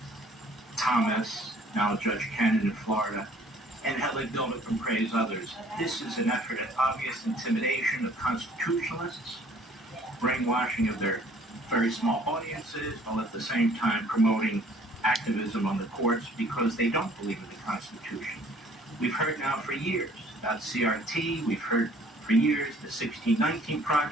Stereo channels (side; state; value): both; normal; correlation 0.56